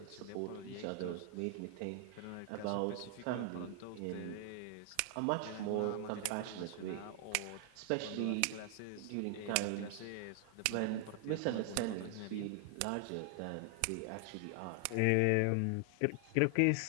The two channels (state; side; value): different; both; correlation 0.00